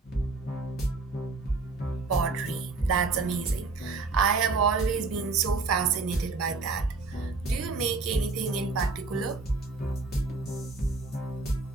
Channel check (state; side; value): quieter; left; 3.9 dB